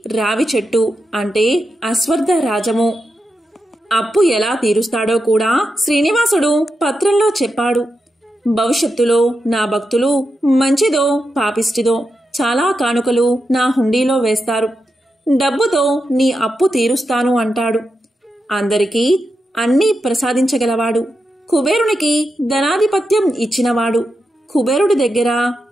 రావి చెట్టు అంటే అశ్వత్థ రాజము. అప్పు ఎలా తీరుస్తాడో కూడా శ్రీనివాసుడు పత్రంలో చెప్పాడు. భవిష్యత్తులో నా భక్తులు మంచిదో పాపిష్టిదో చాలా కానుకలు నా హుండీలో వేస్తారు. డబ్బుతో నీ అప్పు తీరుస్తాను అంటాడు. అందరికీ అన్నీ ప్రసాదించగలవాడు. కుబేరునికి ధనాధిపత్యం ఇచ్చినవాడు. కుబేరుడి దగ్గర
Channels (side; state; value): both; normal; correlation 0.88